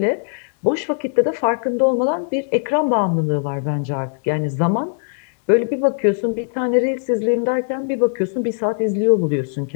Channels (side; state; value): right; silent; digital silence